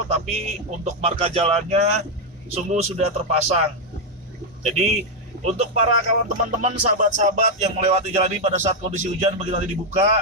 tapi untuk marka jalannya sungguh sudah terpasang. Jadi untuk para kawan teman-teman, sahabat-sahabat yang melewati jalan ini pada saat kondisi hujan begitu nanti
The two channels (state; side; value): normal; both; correlation 0.02